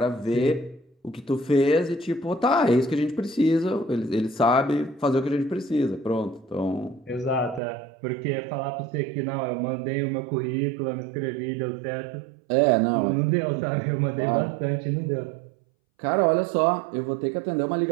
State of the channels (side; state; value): left; drops out; at 7.6 s